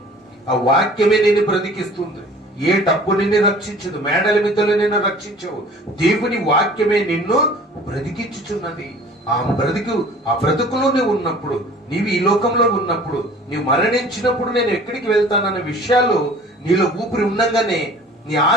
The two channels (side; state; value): both; normal; correlation 0.47